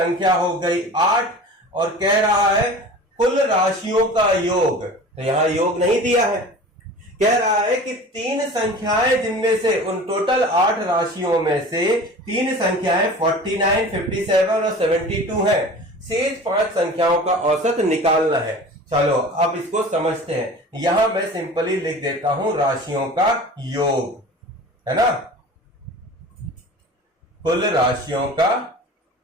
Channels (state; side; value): normal; both; correlation 0.39